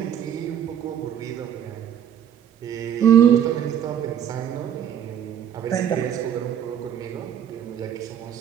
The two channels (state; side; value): quieter; left; 9.4 dB